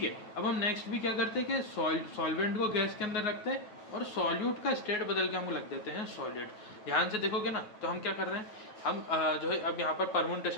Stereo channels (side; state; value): right; late; 9.5 ms